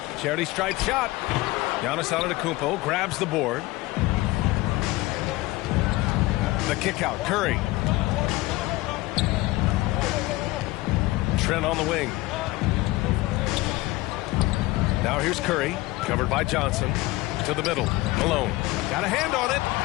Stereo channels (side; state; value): right; quieter; 19.6 dB